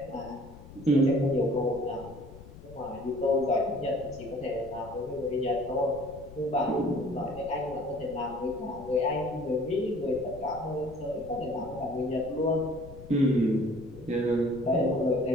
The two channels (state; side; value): noise; left; rumble, 17 dB below the sound